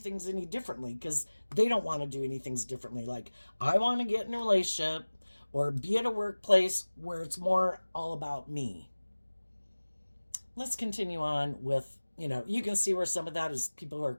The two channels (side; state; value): both; inverted; correlation -1.00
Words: any differently, because they don't want to do anything differently. Like, I want to get in a relationship or be at a workplace where it's more all about me. Let's continue on with, you can see where some of that is people who are